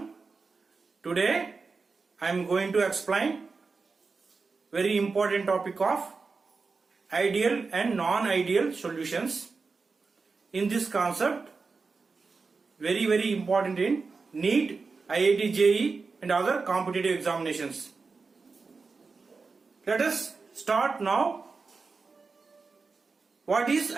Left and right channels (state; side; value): quieter; left; 4.4 dB